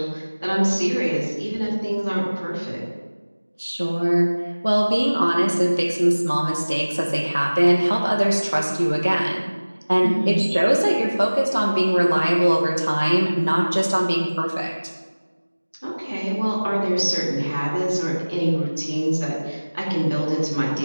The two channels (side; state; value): both; inverted; correlation -1.00